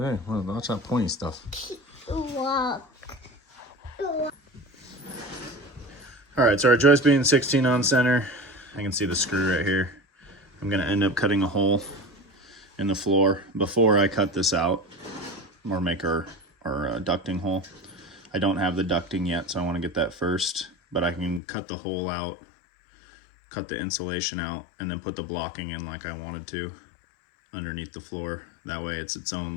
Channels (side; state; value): right; drops out; at 21.4 s